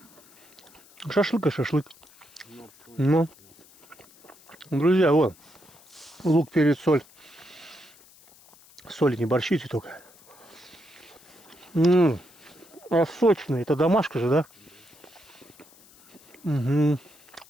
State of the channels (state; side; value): noise; left; hiss, 26 dB below the sound